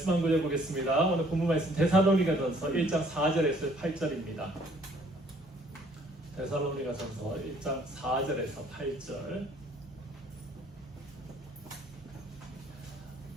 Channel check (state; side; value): normal; both; correlation 0.60